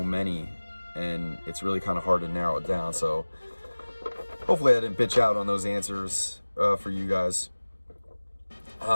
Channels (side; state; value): both; inverted; correlation -1.00